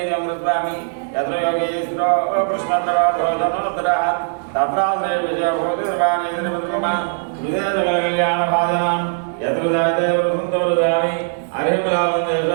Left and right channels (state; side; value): silent; left; digital silence